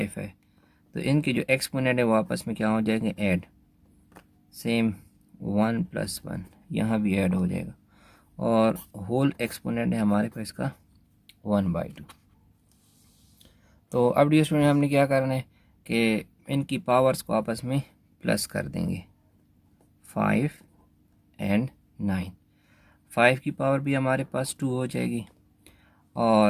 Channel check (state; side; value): identical; both; correlation 1.00